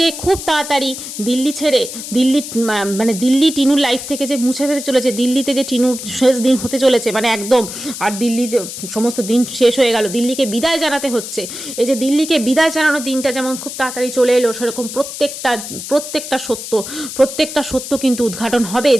খুব তাড়াতাড়ি দিল্লি ছেড়ে মানে দিল্লি টিনুর লাইফ থেকে যে মুছে ফেলতে চলেছে, দিল্লিতে যে টিনুর শেষ দিন হতে চলেছে মানে একদম, আর দিল্লি যে সমস্ত দিন শেষ হয়ে গেল, দিল্লিকে বিদায় জানাতে হচ্ছে। এই যে দিল্লিকে বিদায় জানানোর দিনটা যেমন খুব তাড়াতাড়ি চলে এলো, সেরকম প্রত্যেকটা সত্য কিন্তু উদ্ঘাটন হবে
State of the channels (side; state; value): left; noise; hiss, 9 dB below the sound